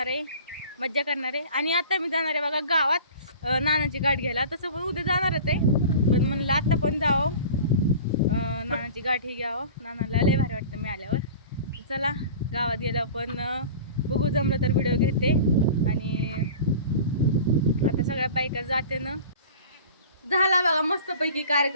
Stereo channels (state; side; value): inverted; both; correlation -0.40